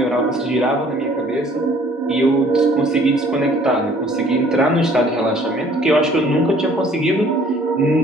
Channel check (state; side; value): normal; both; correlation 0.56